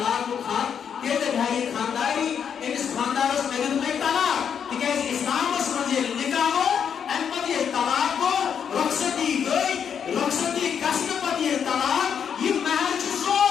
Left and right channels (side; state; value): right; quieter; 7.7 dB